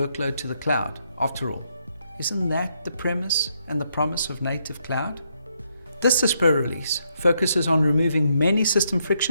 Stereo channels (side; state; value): both; inverted; correlation -0.76